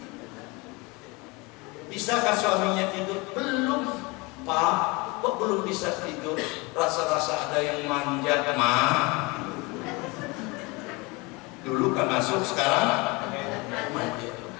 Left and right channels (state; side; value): quieter; right; 26.0 dB